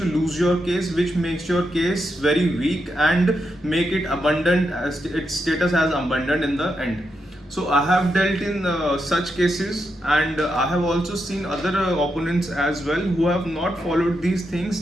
lose your case, which makes your case very weak and make it abundant as its status as abundant in the end. So I have dealt in such cases and I have also seen other opponents as well who have not followed these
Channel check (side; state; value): both; normal; correlation 0.84